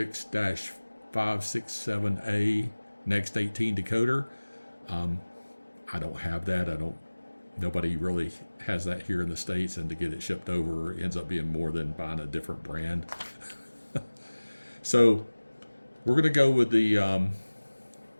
Next 18 decoder. I don't have that. Nobody really has that here in the States, and to get it shipped over ends up being more than buying a different brand. So we're going to go with the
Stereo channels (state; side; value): inverted; both; correlation -1.00